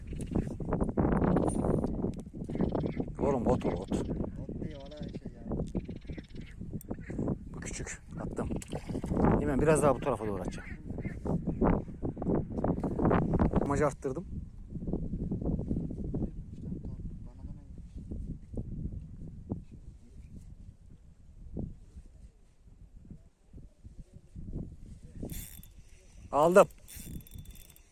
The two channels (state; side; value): identical; both; correlation 1.00